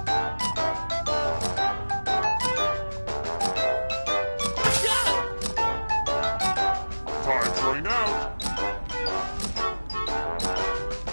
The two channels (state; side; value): inverted; both; correlation -1.00